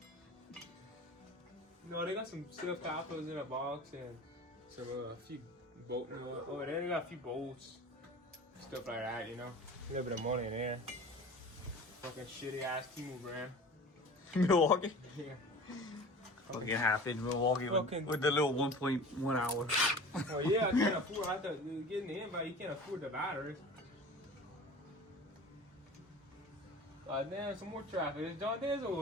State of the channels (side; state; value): both; normal; correlation 0.39